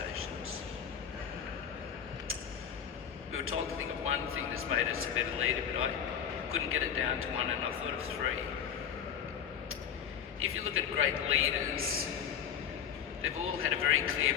We were told to think of one thing that's made us a better leader, but I couldn't get it down to one, and I thought of three. If you look at great leaders, they've all had a very clear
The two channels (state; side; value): quieter; right; 8.4 dB